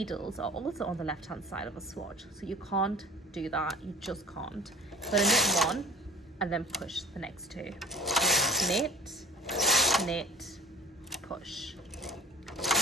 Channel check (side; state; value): both; normal; correlation 0.41